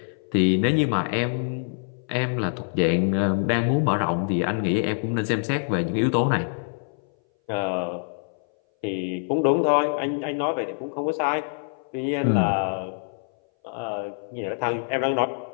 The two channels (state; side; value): silent; right; 59 dB below the other